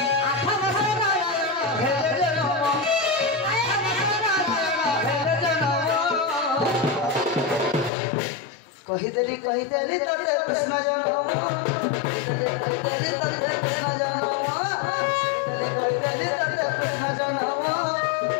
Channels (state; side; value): drops out; right; at 7.9 s